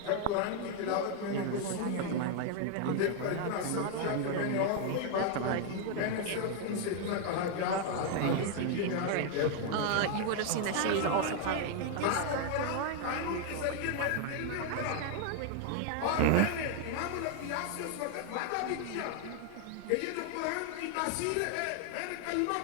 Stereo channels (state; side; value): different; both; correlation 0.00